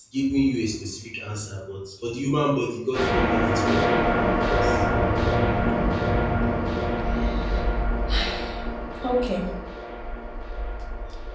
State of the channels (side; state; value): both; identical; correlation 1.00